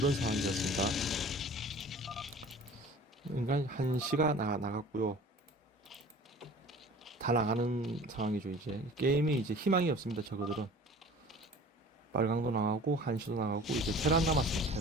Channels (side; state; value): both; normal; correlation 0.44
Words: 상황이 되었습니다. 그러니까 한시가 나갔고요. 다 나가는 상황이죠. 이제 게임이 이제 희망이 없습니다. 저거들은 빨강도 나가고 한시도 나가고 이제 테란